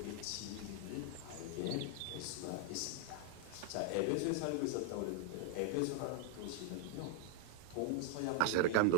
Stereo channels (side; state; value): both; different; correlation 0.00